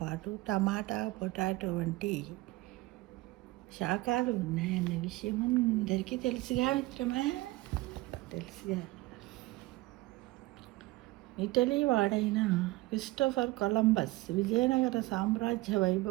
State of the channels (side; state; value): left; quieter; 19.8 dB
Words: పాటు టమాటా, పొటాటో వంటి శాఖలు ఉన్నాయన్న విషయం అందరికీ తెలుసుగా మిత్రమా. తెలుసుగా. ఇటలీ వాడైన క్రిస్టోఫర్ కొలంబస్ విజయనగర సామ్రాజ్య